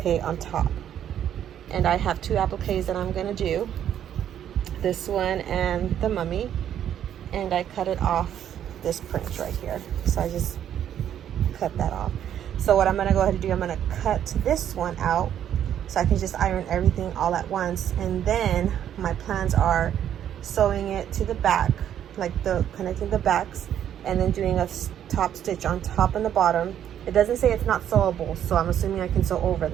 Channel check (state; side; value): quieter; left; 10.1 dB